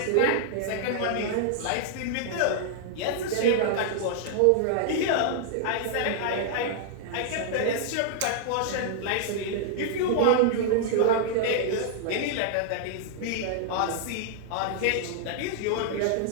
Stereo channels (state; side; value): different; both; correlation -0.01